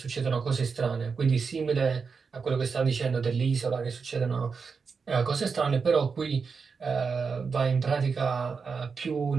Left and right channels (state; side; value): quieter; left; 5.3 dB